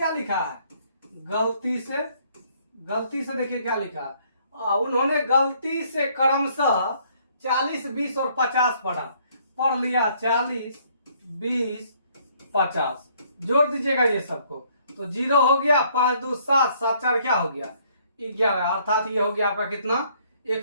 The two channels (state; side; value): inverted; both; correlation -0.64